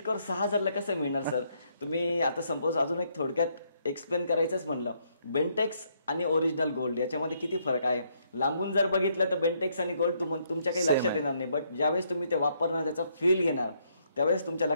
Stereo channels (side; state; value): both; inverted; correlation -0.72